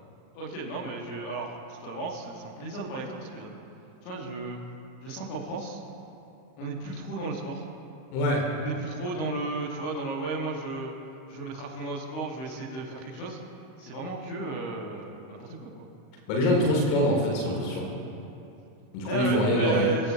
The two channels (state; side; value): late; right; 39 ms